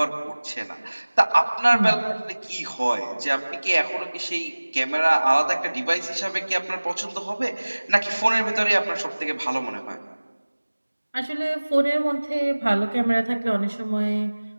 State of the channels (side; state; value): both; inverted; correlation -1.00